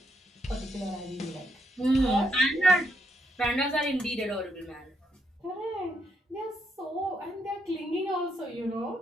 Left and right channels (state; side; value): normal; both; correlation 0.78